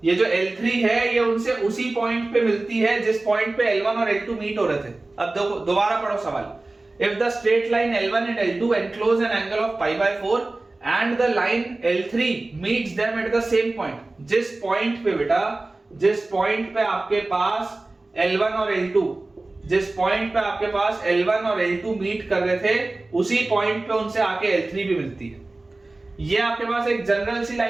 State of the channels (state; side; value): quieter; left; 3.0 dB